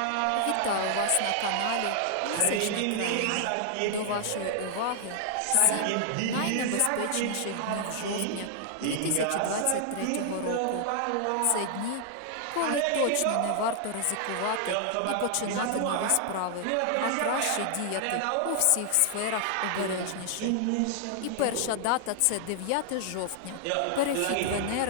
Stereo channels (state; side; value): different; both; correlation 0.00